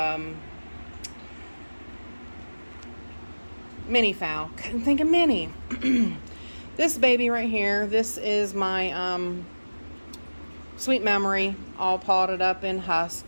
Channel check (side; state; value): both; inverted; correlation -1.00